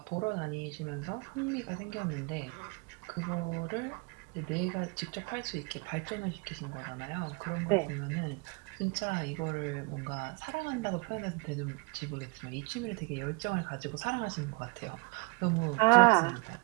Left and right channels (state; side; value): quieter; left; 28.8 dB